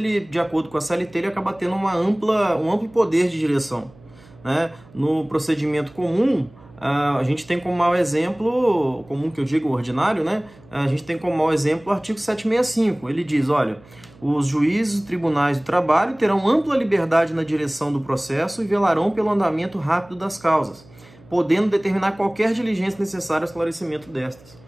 de acordo com a CLT, ele acaba tendo um amplo poder de direção. Né? No procedimento comum, a gente tem como mau exemplo, comum que eu digo ordinário, né? A gente tem como mau exemplo o artigo 765. Ele diz, olha, os juízes e tribunais do trabalho terão ampla liberdade na direção do processo e velarão pelo andamento rápido das causas, podendo determinar qualquer diligência necessária ao esclarecimento destas.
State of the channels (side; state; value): right; noise; hum, 25 dB below the sound